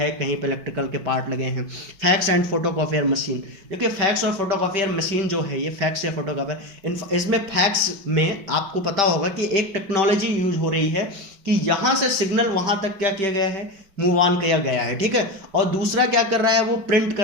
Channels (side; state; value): left; late; 5.1 ms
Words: कहीं पे इलेक्ट्रिकल के पार्ट लगे हैं। फैक्स एंड फोटोकॉपियर मशीन, देखिए फैक्स और फोटोकॉपियर मशीन जो है, ये फैक्स या फोटोकॉपियर, इसमें फैक्स में आपको पता होगा कि एक टेक्नोलॉजी यूज हो रही है कि यहाँ से सिग्नल वहाँ तक क्या किया गया है, मूव ऑन किया गया है, ठीक है। और दूसरा क्या कर रहा है, वो प्रिंट